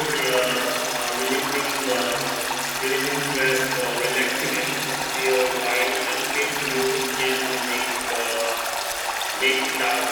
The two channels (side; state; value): both; identical; correlation 1.00